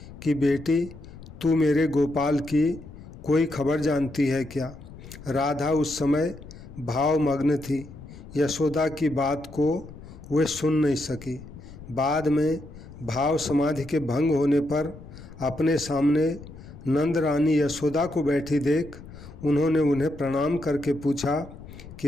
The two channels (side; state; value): left; noise; rumble, 16 dB below the sound